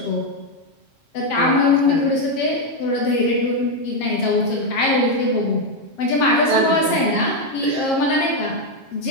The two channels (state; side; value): late; right; 7.5 ms